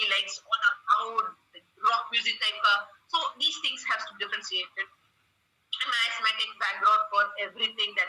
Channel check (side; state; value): both; identical; correlation 1.00